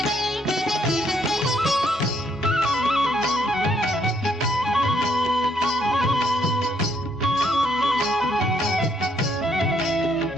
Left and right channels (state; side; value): normal; both; correlation 0.71